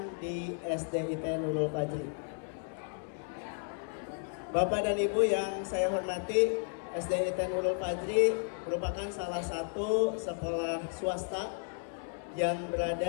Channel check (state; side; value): silent; right; 56 dB below the other